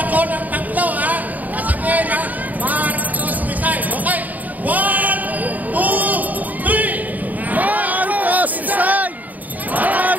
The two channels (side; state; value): left; late; 0.079 ms